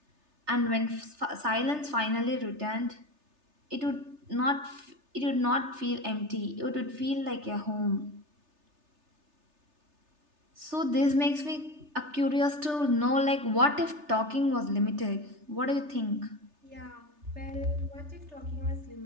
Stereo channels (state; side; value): late; left; 3.3 ms